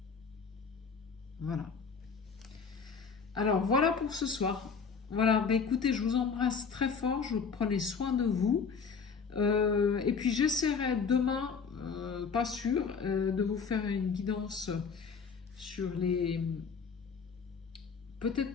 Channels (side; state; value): right; quieter; 5.7 dB